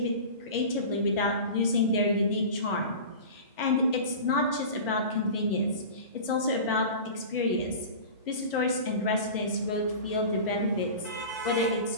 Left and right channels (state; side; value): inverted; both; correlation -0.34